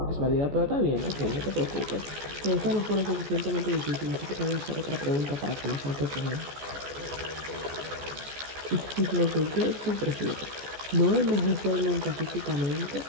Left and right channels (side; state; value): left; late; 14 ms